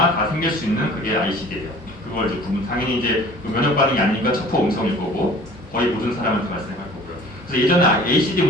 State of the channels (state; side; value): normal; both; correlation 0.48